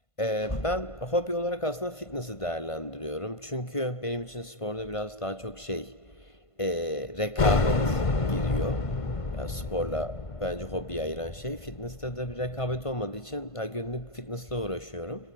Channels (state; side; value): late; right; 1.5 ms